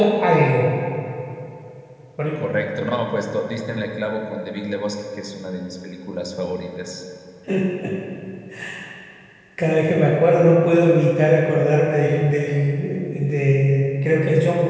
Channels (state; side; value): identical; both; correlation 1.00